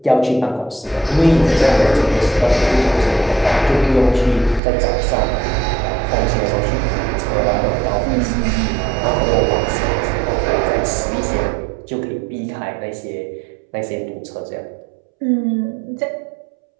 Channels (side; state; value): left; drops out; at 4.6 s